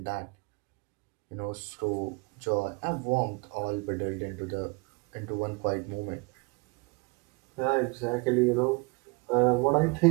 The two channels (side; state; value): left; quieter; 29.7 dB